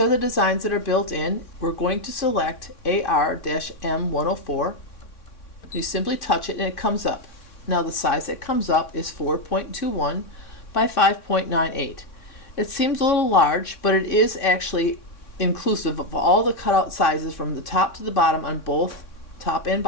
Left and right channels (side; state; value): right; late; 3.6 ms